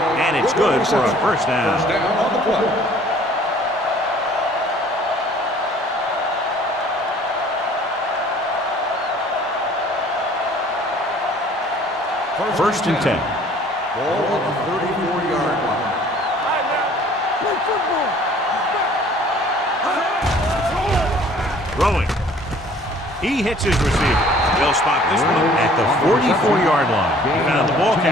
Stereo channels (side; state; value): both; normal; correlation 0.54